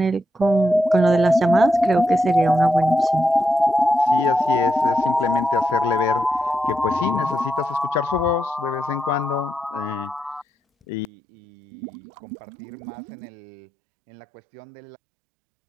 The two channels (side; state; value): left; drops out; at 11.1 s